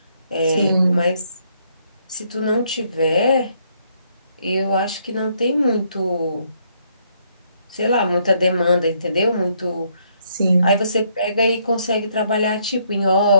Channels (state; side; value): inverted; both; correlation -0.71